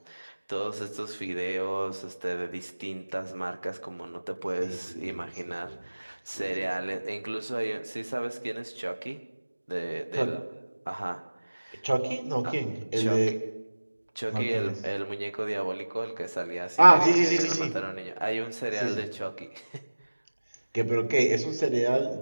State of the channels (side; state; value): both; inverted; correlation -1.00